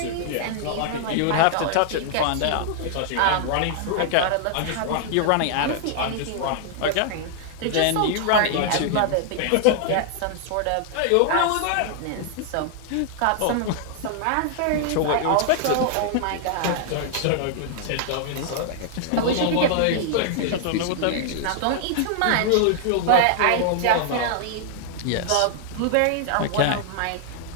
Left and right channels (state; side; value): different; both; correlation -0.01